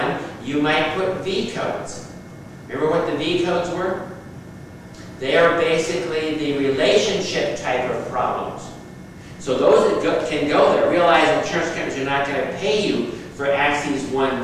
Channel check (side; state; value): both; identical; correlation 1.00